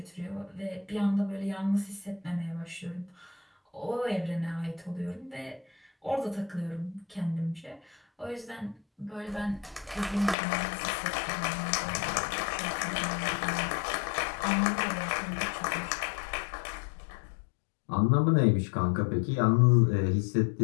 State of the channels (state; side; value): drops out; right; at 10.4 s